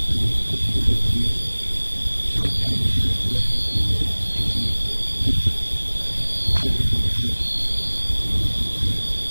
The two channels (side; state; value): both; inverted; correlation -1.00